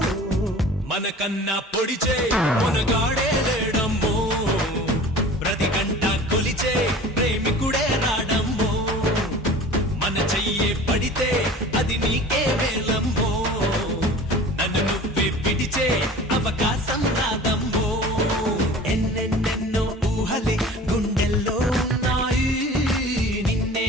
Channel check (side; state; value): both; normal; correlation 0.41